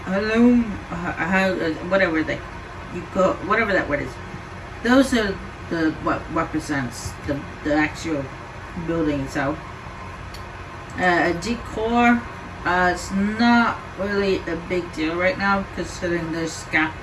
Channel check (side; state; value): both; identical; correlation 1.00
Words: whatever that word is. Those are what represents the actual building itself. Decor, it's not really a big deal right now considering there's